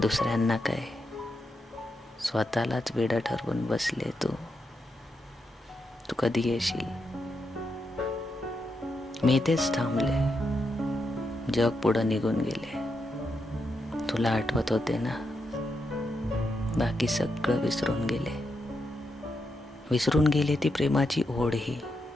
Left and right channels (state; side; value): normal; both; correlation 0.84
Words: काय, स्वतःलाच वेडं ठरवून बसले. तू कधी येशील? मी तेच थांबले. जग पुढं निघून गेले. तुला आठवत होते ना? बाकी सगळं विसरून गेले. विसरून गेले ती प्रेमाची ओढही.